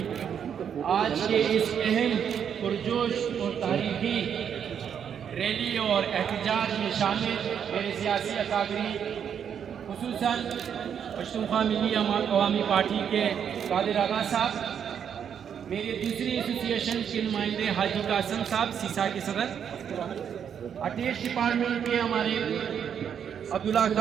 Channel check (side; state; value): left; quieter; 8.1 dB